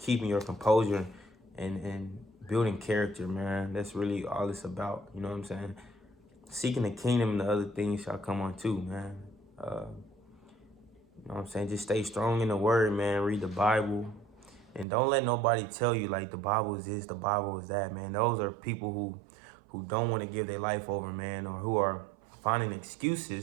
your composure and building character, man. That's really all it's about. You know what I'm saying? Seeking the kingdom and the other things shall come on too, man. You know what I'm saying? Just stay strong in the word, man. Read the Bible. And don't let nobody tell you like the Bible is this, the Bible is that, man. Those are people who don't want to give their life over, man, or who are finding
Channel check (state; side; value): drops out; left; at 14.9 s